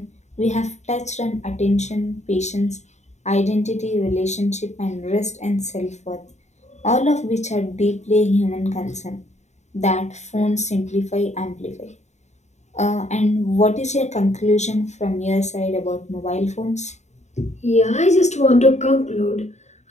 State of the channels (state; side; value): late; right; 0.33 ms